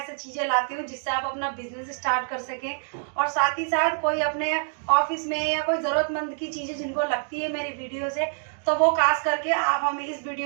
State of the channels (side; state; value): left; silent; digital silence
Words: चीजें लाती हूँ जिससे आप अपना बिजनेस स्टार्ट कर सकें और साथ ही साथ कोई अपने ऑफिस में या कोई जरूरतमंद की चीजें जिनको लगती है मेरी वीडियो से, तो वो खास करके आप हमें इस